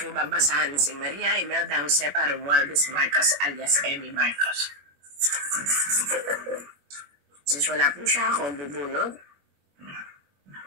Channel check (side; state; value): left; late; 21 ms